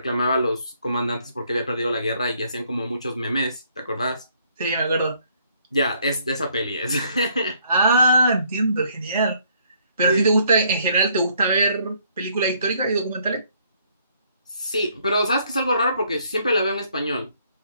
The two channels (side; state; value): both; inverted; correlation -0.67